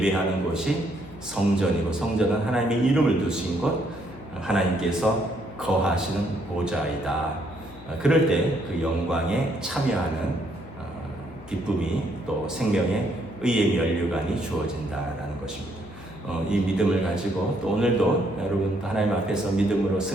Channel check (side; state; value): left; noise; hum, 18 dB below the sound